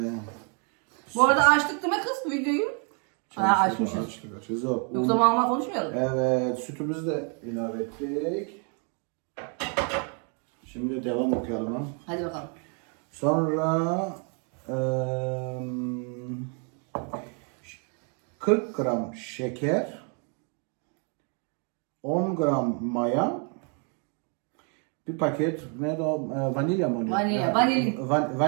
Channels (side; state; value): left; quieter; 39.9 dB